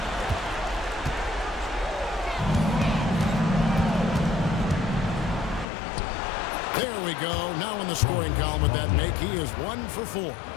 There we go. Now in the scoring column with that make, he is 1 for 4.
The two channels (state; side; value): drops out; right; at 5.7 s